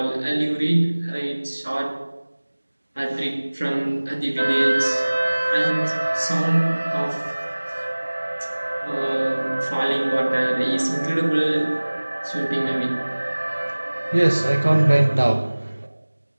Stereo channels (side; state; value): both; inverted; correlation -1.00